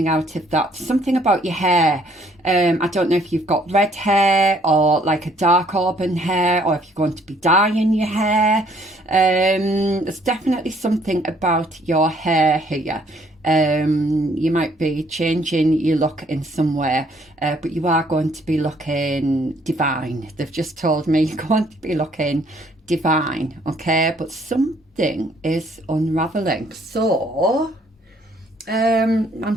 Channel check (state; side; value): normal; both; correlation 0.64